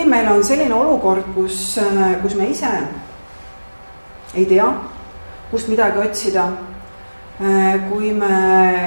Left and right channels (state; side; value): inverted; both; correlation -1.00